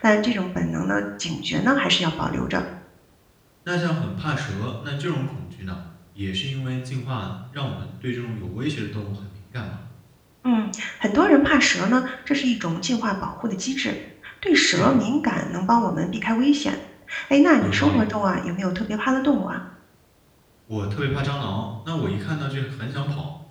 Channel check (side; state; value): both; identical; correlation 1.00